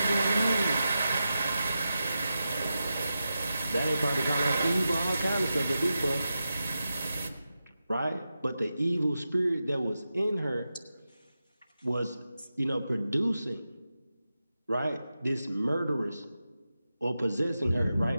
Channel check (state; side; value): inverted; both; correlation -0.91